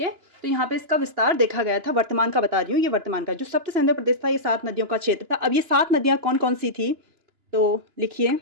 है, तो यहाँ पे इसका विस्तार देखा गया था। वर्तमान का बता रही हूँ, ये वर्तमान का जो सप्त सैंधव प्रदेश था ये 7 नदियों का क्षेत्र था। अब ये 7 नदियाँ कौन कौन सी थी तो लिखिए,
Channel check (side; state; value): left; late; 2.9 ms